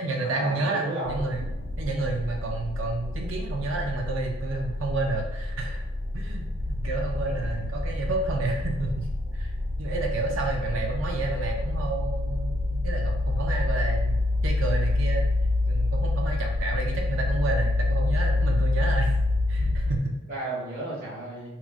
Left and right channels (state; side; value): normal; both; correlation 0.74